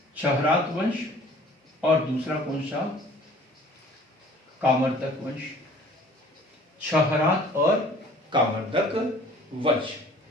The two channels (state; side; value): normal; both; correlation 0.51